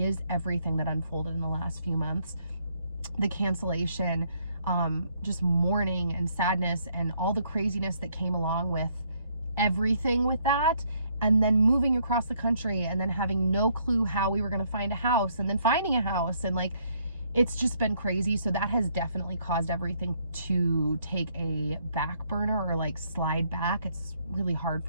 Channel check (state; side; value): inverted; both; correlation -0.69